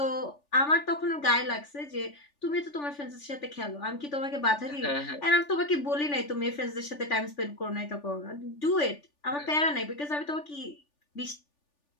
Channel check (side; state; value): right; late; 3.4 ms